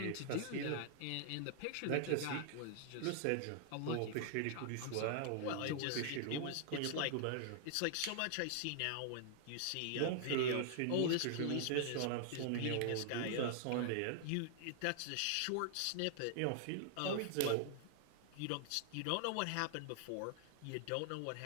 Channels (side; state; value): both; different; correlation -0.01